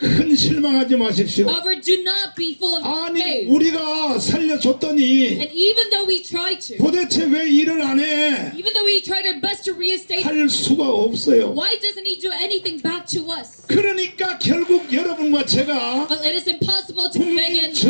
실망하지 마십시오. However, do not be full of 아니 faith. 우리가 살려줬더니 And even though we try to, 도대체 왜 일을 안 해? even though we tried our best to reinstate, 할 수가 없어요. why doesn't he do anything back to us? 그러니까 결국 여러분과 제가 Well, it is impossible to 국민 begin.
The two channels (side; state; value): both; inverted; correlation -1.00